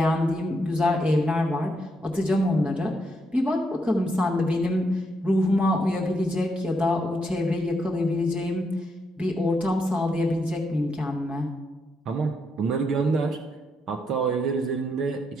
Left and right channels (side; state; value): both; normal; correlation 0.79